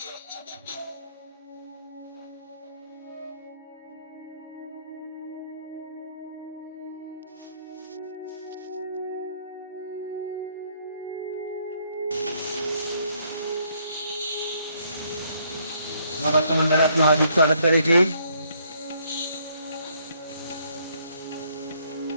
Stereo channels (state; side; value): inverted; both; correlation -0.68